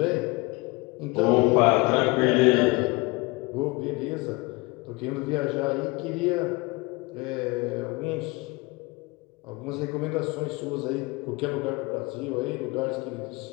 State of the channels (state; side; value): quieter; right; 24.6 dB